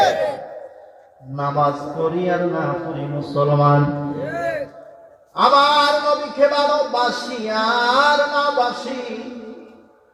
নামাজ পড়ি আর না পড়ি মুসলমান। আমার নবীকে ভালোবাসি আর না বাসি,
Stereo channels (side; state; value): both; identical; correlation 1.00